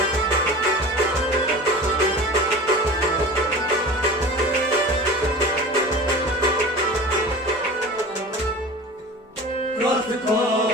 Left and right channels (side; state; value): both; normal; correlation 0.36